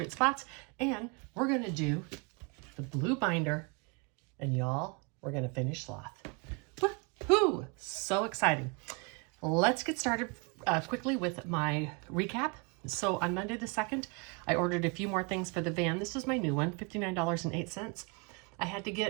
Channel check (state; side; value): quieter; left; 31.4 dB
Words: spots. And we're going to do the blue binder. And y'all, we're going to finish sloth. Woohoo! So exciting. Let's get started quickly with my recap. So on Monday the 2nd, I ordered a few more things for the van. This is my new one, $59.08. I had to